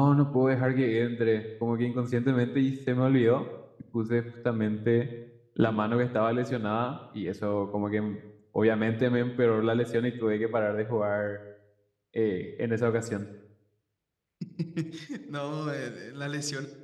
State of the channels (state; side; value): identical; both; correlation 1.00